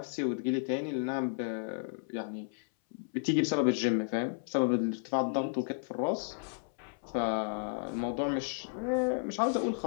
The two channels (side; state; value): right; silent; 56 dB below the other